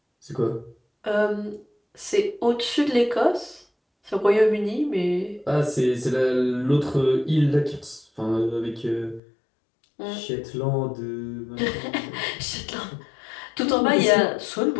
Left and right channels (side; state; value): right; drops out; at 9.2 s